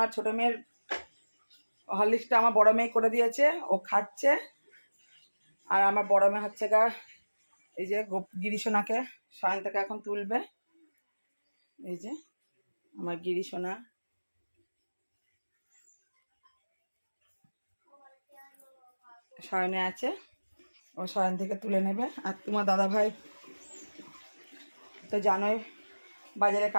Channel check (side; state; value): both; inverted; correlation -1.00